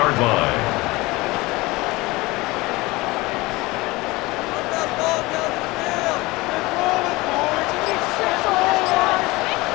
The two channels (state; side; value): quieter; right; 21.7 dB